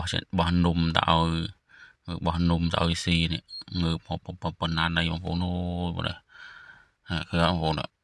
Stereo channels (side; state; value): both; identical; correlation 1.00